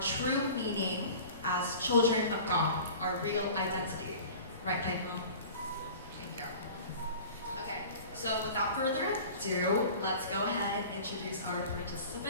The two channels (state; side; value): inverted; both; correlation -0.41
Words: meaning as children of God, our real identity. Right, Taiko? Thank you. Okay, so without further ado, let's go ahead and introduce our